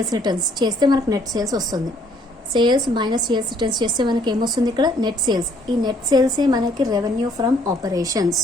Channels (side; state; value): both; normal; correlation 0.63